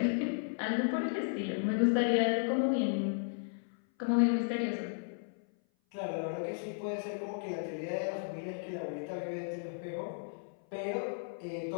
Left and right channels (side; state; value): right; silent; 55 dB below the other